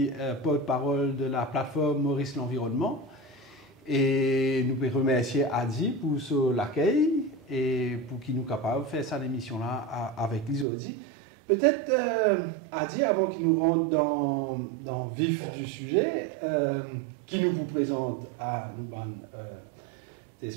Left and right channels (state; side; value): drops out; left; at 10.7 s